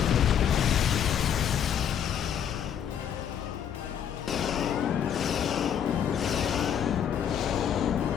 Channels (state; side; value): quieter; right; 8.8 dB